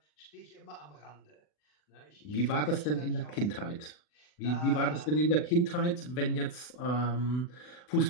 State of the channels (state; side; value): late; right; 40 ms